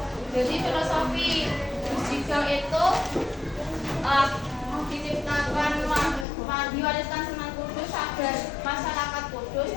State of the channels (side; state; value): right; drops out; at 6.2 s